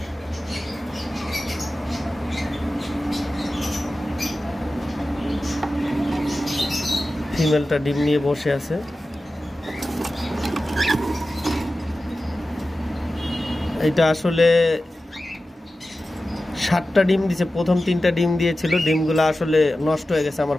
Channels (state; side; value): normal; both; correlation 0.94